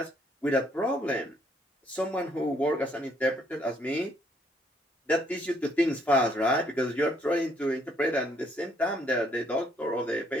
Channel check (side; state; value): both; normal; correlation 0.68